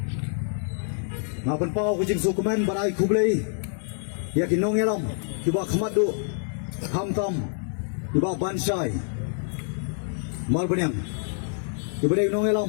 Ngapan pau kujing sukumen barai kublei, ya kinong elam. Kiba khamadu hamtam kiba bansai mal banyang kiba dei nong elam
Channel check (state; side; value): silent; right; digital silence